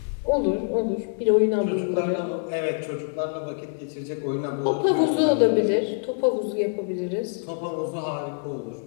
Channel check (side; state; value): right; silent; 62 dB below the other